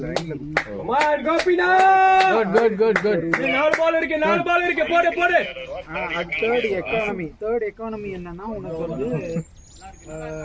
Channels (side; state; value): both; identical; correlation 1.00